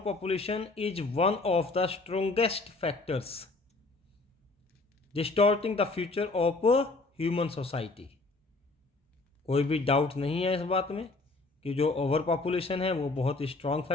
is one of the strongest factors distorting the future of human society. कोई भी डाउट नहीं है इस बात में कि जो ओवर पॉपुलेशन है वो बहुत ही स्ट्रॉन्ग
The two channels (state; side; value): quieter; right; 3.4 dB